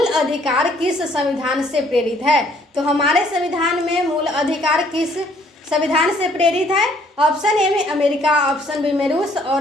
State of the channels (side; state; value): both; normal; correlation 0.63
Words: अधिकार किस संविधान से प्रेरित है? तो हमारे संविधान में मूल अधिकार किस संविधान से प्रेरित है? ऑप्शन ए में अमेरिका, ऑप्शन बी में रूस,